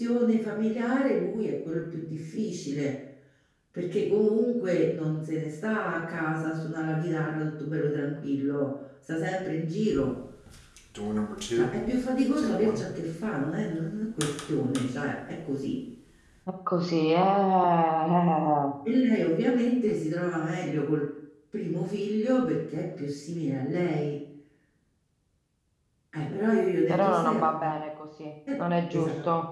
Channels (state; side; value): identical; both; correlation 1.00